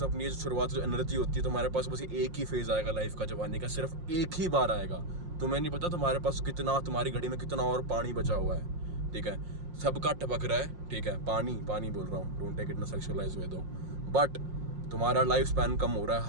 अपनी शुरुआत जो एनर्जी होती है तुम्हारे पास, बस एक ही फेज आएगा लाइफ का जवानी का, सिर्फ एक ही बार आएगा। तुम्हें नहीं पता तुम्हारे पास कितना, तुम्हारी घड़ी में कितना और पानी बचा हुआ है, ठीक है। सबका टपक रहा है, ठीक है, पानी पानी बोल रहा हूँ, don't take it in sexualize way दो, बट तुम्हारा लाइफ स्पैन कम हो रहा है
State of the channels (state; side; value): late; left; 5.6 ms